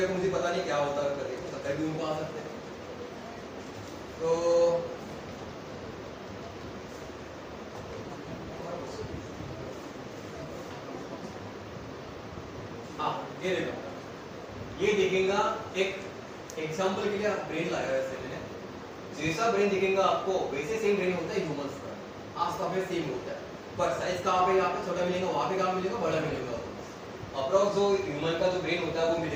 को मुझे पता नहीं क्या होता है, करके तो कभी उनको आ सकते हैं। तो हाँ, ये देखो, ये दिखेगा एक एग्जांपल के लिए ब्रेन लाया है वैसे मैंने। जैसा ब्रेन दिखेगा आपको वैसे सेम ब्रेन होता है ह्यूमंस का, आसपास में सेम होता है। पर साइज कहाँ पे? यहाँ पे छोटा मिलेगा, वहाँ पे कहाँ मिलेगा? बड़ा मिलेगा। अप्रॉक्स जो ह्यूमन का जो ब्रेन होता है वो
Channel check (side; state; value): both; identical; correlation 1.00